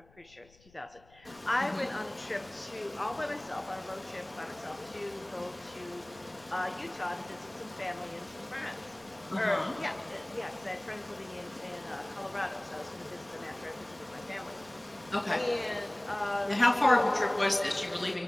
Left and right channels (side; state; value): left; noise; rumble, 28 dB below the sound